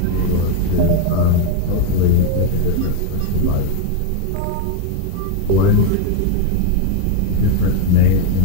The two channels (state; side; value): different; both; correlation 0.01